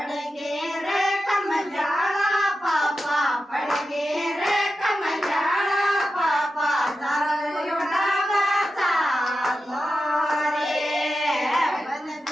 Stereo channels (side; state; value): both; normal; correlation 0.91